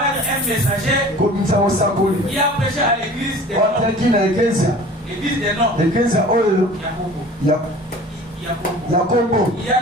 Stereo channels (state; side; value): normal; both; correlation 0.44